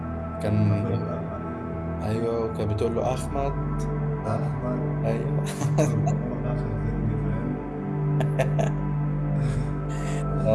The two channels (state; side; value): identical; both; correlation 1.00